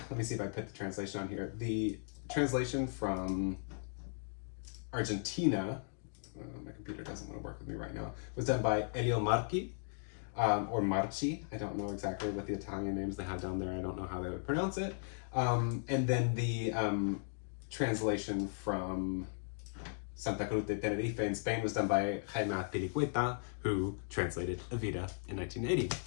me see if I put the translation on here. The translation from Argentina, my computer doesn't want to work with me right now, was done by Elio Marchi, or Marchi. I don't know exactly what the Italian names they have down there. I don't know how they would pronounce it. And then the translation from Santa Cruz de Tenerife in Spain was done by Jaime Pilicueta, who translated Evita in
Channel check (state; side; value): silent; right; digital silence